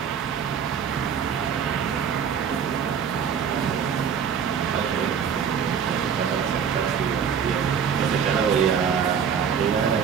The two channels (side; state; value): left; quieter; 7.3 dB